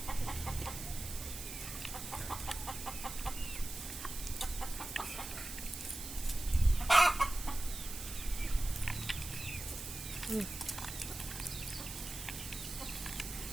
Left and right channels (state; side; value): noise; right; hiss, 8 dB below the sound